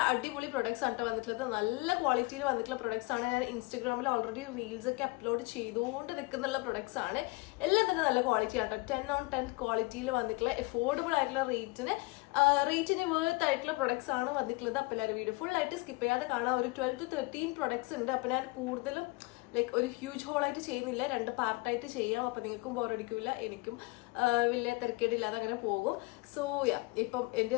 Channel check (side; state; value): right; quieter; 24.6 dB